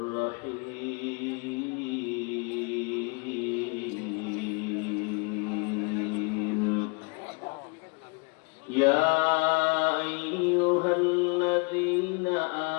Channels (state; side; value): quieter; right; 32.1 dB